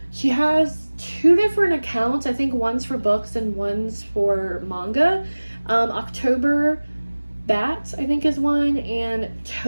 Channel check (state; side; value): inverted; both; correlation -1.00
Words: she has 2 different accounts. I think one's for books and one's for manga. October Bats, I think, is one, and